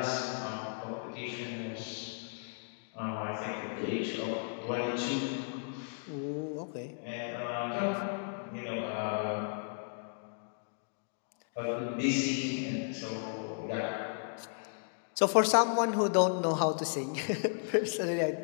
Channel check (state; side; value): silent; right; digital silence